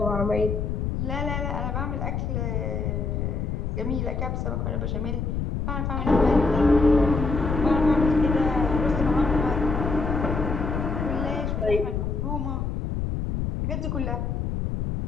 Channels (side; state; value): left; noise; rumble, 1 dB below the sound